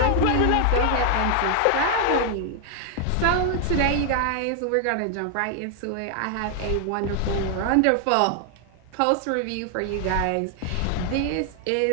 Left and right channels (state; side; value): different; both; correlation 0.00